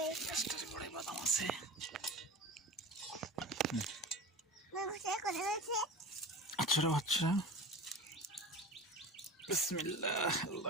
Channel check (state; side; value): normal; both; correlation 0.32